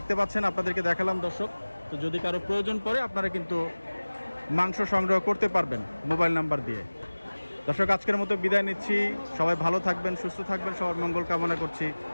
পাচ্ছেন, আপনাদেরকে দেখালাম দর্শক। তো যদি কারো প্রয়োজন পড়ে আপনারা কিন্তু মাংস সংগ্রহ করতে পারবেন মোবাইল নাম্বার দিয়ে। দর্শক আজকের মতো বিদায় নিচ্ছি, সবাই ভালো থাকবেন, সুস্থ থাকবেন, সবার মঙ্গল কামনা করছি।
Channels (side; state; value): both; inverted; correlation -1.00